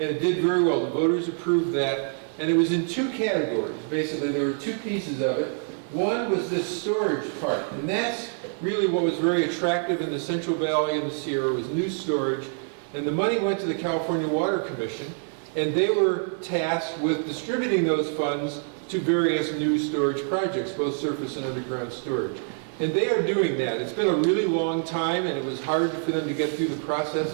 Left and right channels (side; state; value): left; silent; 61 dB below the other